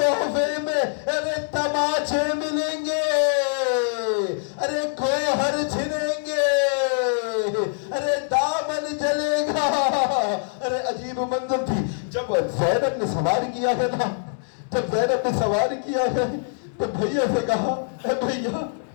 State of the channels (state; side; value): silent; right; digital silence